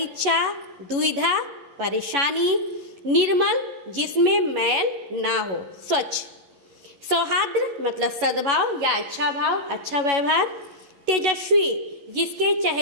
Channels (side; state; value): left; late; 11 ms